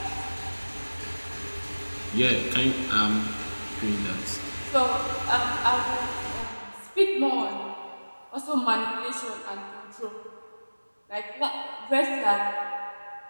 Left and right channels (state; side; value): inverted; both; correlation -1.00